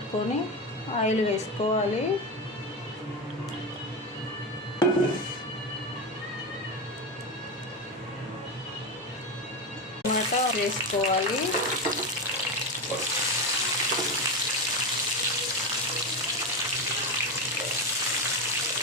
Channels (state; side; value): normal; both; correlation 0.16